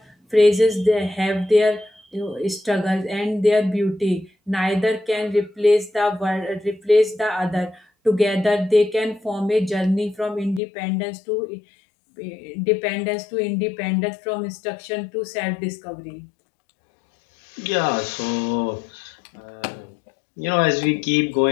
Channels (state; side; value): drops out; right; at 10.6 s